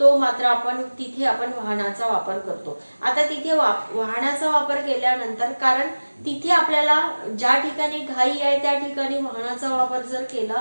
मात्र आपण तिथे वाहनाचा वापर करतो. आता तिथे वाहनाचा वापर केल्यानंतर कारण तिथे आपल्याला ज्या ठिकाणी घाई आहे त्या ठिकाणी वाहनाचा वापर जर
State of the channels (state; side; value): inverted; both; correlation -1.00